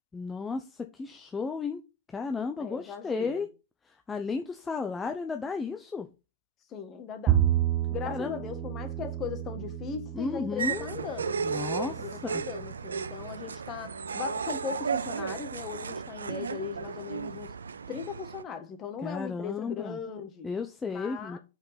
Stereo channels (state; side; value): normal; both; correlation 0.04